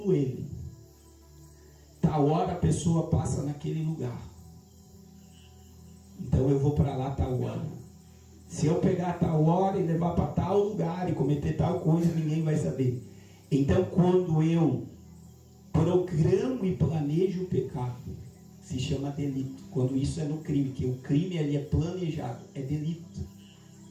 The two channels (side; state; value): both; identical; correlation 1.00